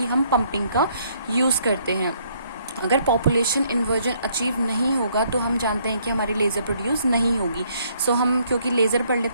हम पंपिंग का यूज़ करते हैं. अगर पॉपुलेशन इन्वर्जन अचीव नहीं होगा तो हम जानते हैं कि हमारी लेज़र प्रोड्यूस नहीं होगी. सो हम क्योंकि लेज़र पढ़ लें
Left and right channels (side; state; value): both; inverted; correlation -0.67